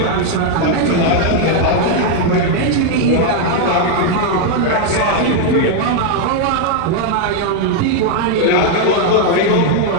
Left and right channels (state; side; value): different; both; correlation 0.00